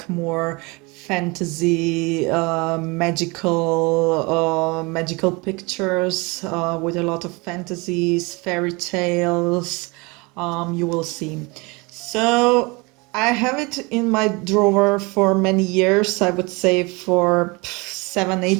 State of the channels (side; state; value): left; quieter; 26.7 dB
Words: more fantasy, magical pictures with a lot of fantasies, fairy tales, you will see. So I have it in my drawer for many years, I would say for